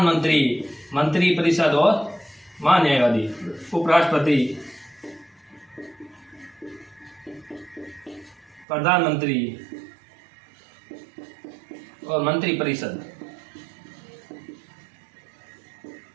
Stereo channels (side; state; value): left; drops out; at 8.7 s